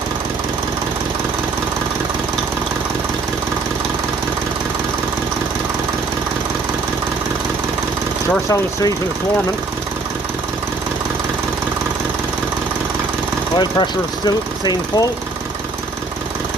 Sure sounds sweet when it's warming. Oil pressure is still staying full.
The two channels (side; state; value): left; quieter; 3.6 dB